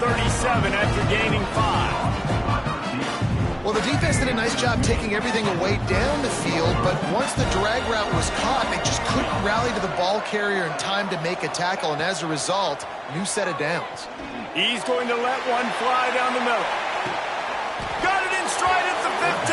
after gaining 5. Well, the defense did a nice job taking everything away down the field, but once the drag route was caught, they just couldn't rally to the ball carrier in time to make a tackle, and as a result, new set of downs. He's going to let one fly down the middle. Got it in stride at the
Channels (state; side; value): identical; both; correlation 1.00